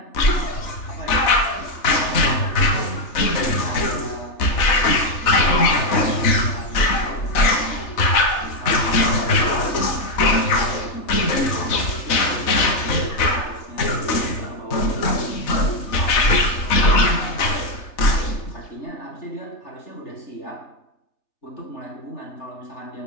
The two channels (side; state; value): right; late; 3.3 ms